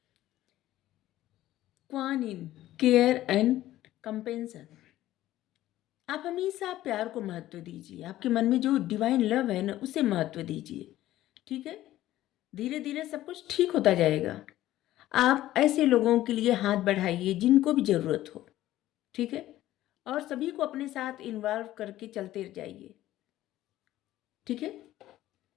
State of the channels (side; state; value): right; quieter; 14.5 dB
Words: Kwan Yin, care and compassion. आप हमेशा प्यार को महत्व दीजिए, आपके मन में जो डिवाइन लव है ना, उसे महत्व दीजिए, ठीक है? धीरे धीरे सब कुछ ठीक होता जाएगा। आप ऐसे लोगों के लिए हाथ बढ़ाइए जिनको भी ज़रूरत हो, ठीक है? और सभी को अपने साथ इन्वॉल्व करके चलते जाइए, ठीक है?